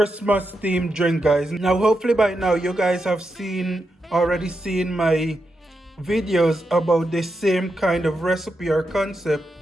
themed drink, guys. Now hopefully by now you guys have already seen my videos about the same kind of recipe or concept,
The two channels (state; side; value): normal; both; correlation 0.86